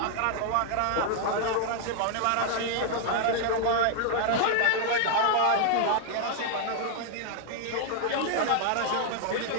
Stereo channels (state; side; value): different; both; correlation 0.00